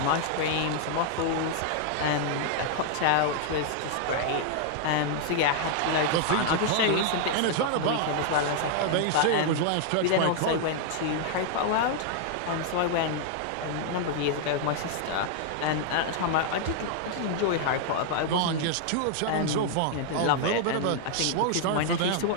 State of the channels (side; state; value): both; different; correlation 0.00